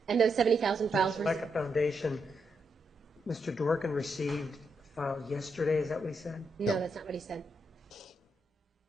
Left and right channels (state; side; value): normal; both; correlation 0.82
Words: And those 70,000 files were... Like a foundation, Mr. Dworkin received a file yesterday, is that what he said? No, that's not what he said.